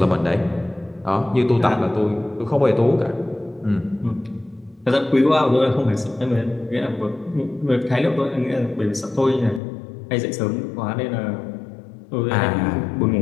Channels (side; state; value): right; drops out; at 9.6 s